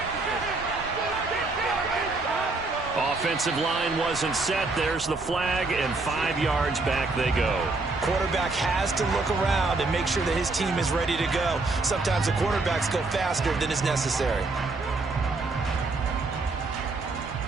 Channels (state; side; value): quieter; left; 3.5 dB